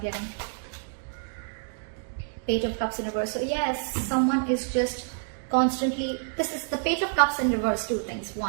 Page of Cups in reverse. So yes, someone is just constantly, this is the Page of Cups in reverse. Two things.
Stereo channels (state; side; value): silent; left; digital silence